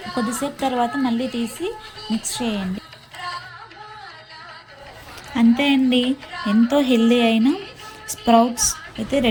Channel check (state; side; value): identical; both; correlation 1.00